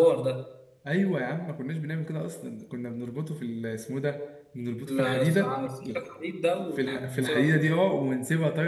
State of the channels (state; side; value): identical; both; correlation 1.00